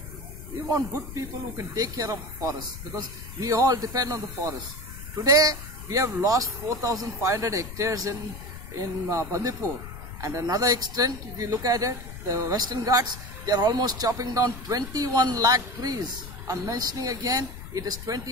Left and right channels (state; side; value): noise; left; rumble, 12 dB below the sound